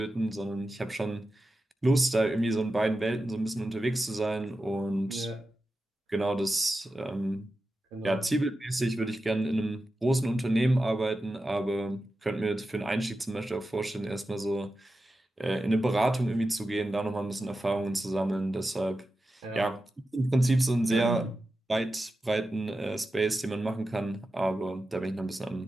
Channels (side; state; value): both; normal; correlation 0.92